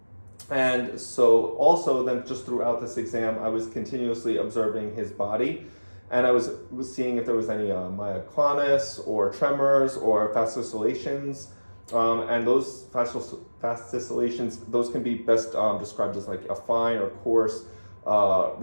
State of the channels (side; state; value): both; inverted; correlation -1.00